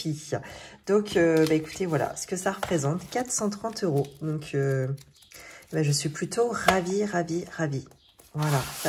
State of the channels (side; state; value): both; identical; correlation 1.00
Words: Donc écoutez, voilà ce que ça représente, 430 €. Donc je suis plutôt ravie. Voilà,